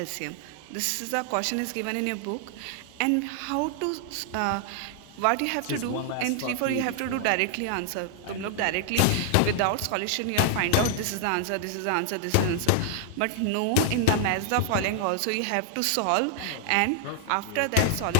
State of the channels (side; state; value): both; different; correlation 0.00